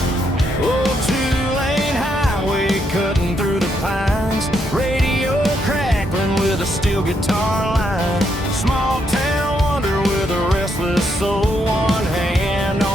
Oh, two-lane highway cutting through the pines, radio crackling with a steel guitar line. Small town wonder with a restless soul, one hand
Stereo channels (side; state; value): both; normal; correlation 0.77